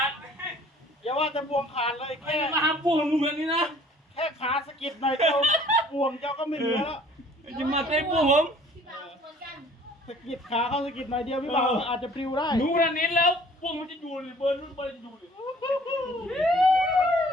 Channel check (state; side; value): normal; both; correlation 0.54